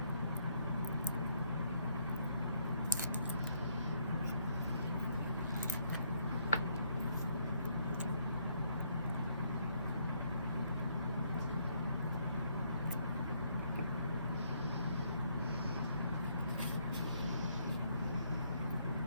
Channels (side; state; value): both; inverted; correlation -0.71